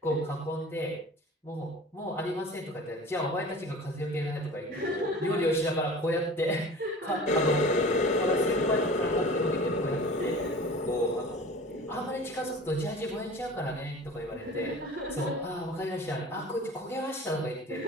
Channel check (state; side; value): normal; both; correlation 0.40